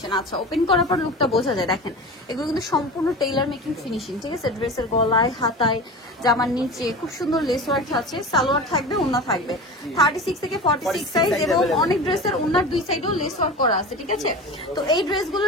আচ্ছা, ওপেন করার পর লুকটা বোঝা যায়। দেখেন এগুলো কিন্তু সম্পূর্ণ টেইলার মেকিং ফিনিশিং, ঠিক আছে? ড্রেসের গলায়, হাতায়, জামার নিচে খুব সুন্দর লেস ওয়ার্ক আছে। সালোয়ার থাকবে, ওড়না থাকবে। 36 থেকে 46 সাইজ এবং অনেক ড্রেসের ওড়নার দুই সাইডেও লেস ওয়ার্ক করা আছে, ঠিক আছে? তো এই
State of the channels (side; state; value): both; normal; correlation 0.32